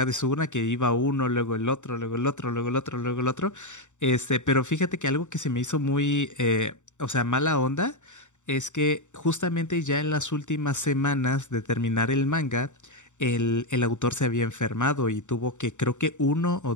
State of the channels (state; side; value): late; right; 0.85 ms